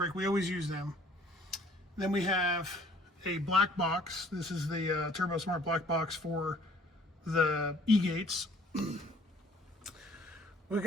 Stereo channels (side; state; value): both; normal; correlation 0.57